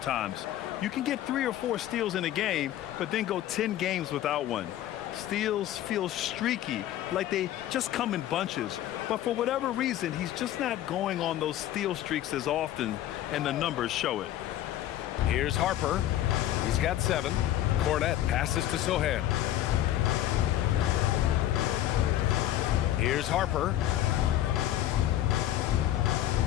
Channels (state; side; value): quieter; right; 12.9 dB